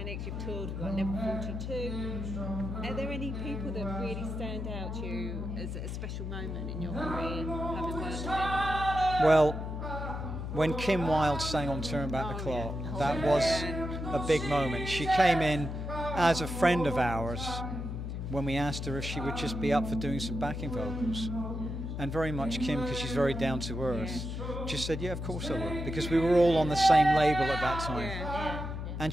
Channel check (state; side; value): noise; left; hum, 5 dB below the sound